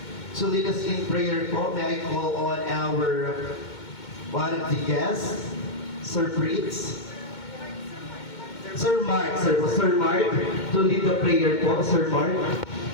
To lead us in prayer po, may I call on our one of the guests, Sir Fritz. Sir Mark, to lead the prayer po, Sir Mark.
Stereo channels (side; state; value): right; late; 2.2 ms